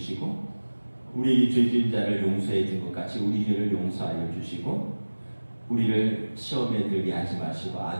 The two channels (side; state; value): both; inverted; correlation -1.00